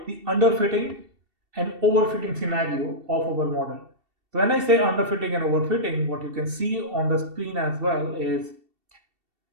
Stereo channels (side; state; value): left; late; 2.7 ms